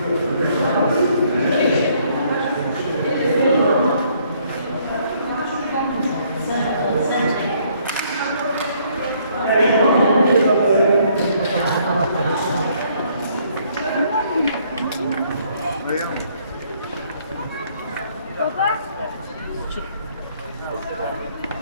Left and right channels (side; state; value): both; inverted; correlation -0.66